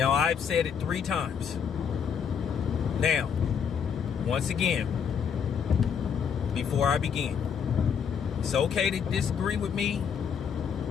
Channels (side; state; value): right; quieter; 7.2 dB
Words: I've said it 3 times. Now, once again, before I begin, it's okay to disagree with me.